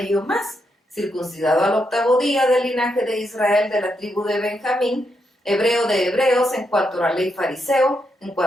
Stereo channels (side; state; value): both; normal; correlation 0.81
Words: yo más, circuncidado al 8º día, del linaje de Israel, de la tribu de Benjamín, hebreo de hebreos, en cuanto a la ley fariseo, en